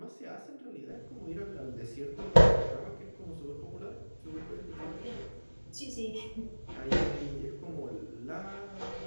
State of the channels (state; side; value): inverted; both; correlation -1.00